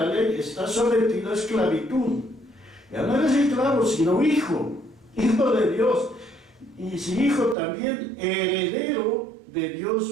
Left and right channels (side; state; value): left; drops out; at 7.6 s